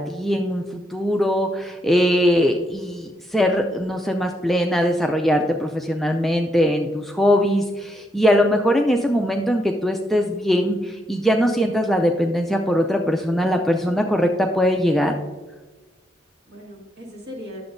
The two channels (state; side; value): normal; both; correlation 0.78